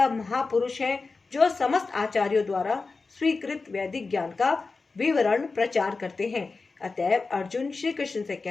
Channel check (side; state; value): right; quieter; 4.1 dB